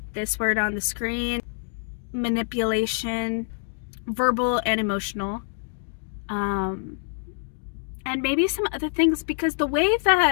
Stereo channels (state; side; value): silent; right; digital silence